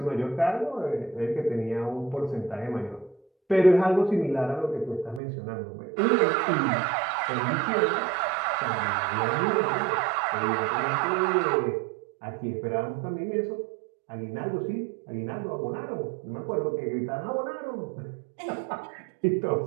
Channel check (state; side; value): drops out; left; at 5.2 s